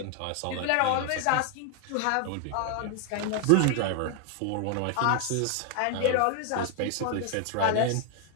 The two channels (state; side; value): different; both; correlation 0.00